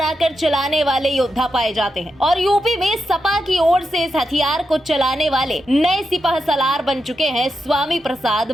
चलाने वाले योद्धा पाए जाते हैं और यूपी में सपा की ओर से इस हथियार को चलाने वाले नए सिपाह सलार बन चुके हैं स्वामी प्रसाद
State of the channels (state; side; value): normal; both; correlation 0.86